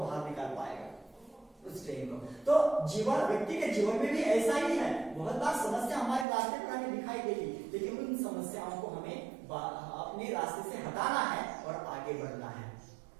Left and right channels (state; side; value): drops out; left; at 6.2 s